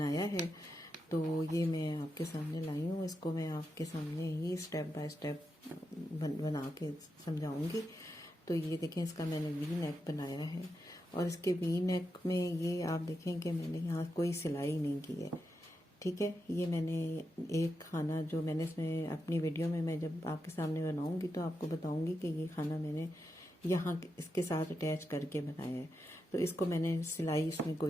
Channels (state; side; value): normal; both; correlation 0.87